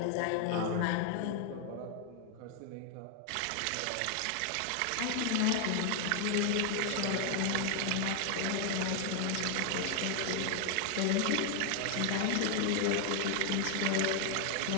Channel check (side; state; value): both; different; correlation 0.00